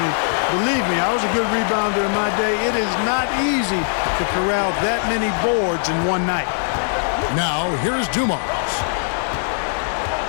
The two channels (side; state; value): right; silent; digital silence